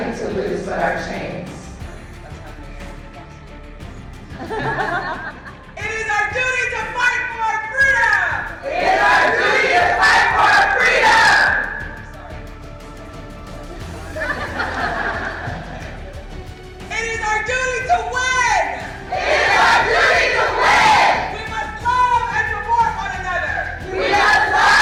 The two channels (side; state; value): both; identical; correlation 1.00